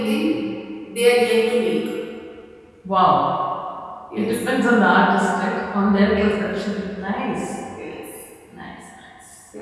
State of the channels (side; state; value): both; identical; correlation 1.00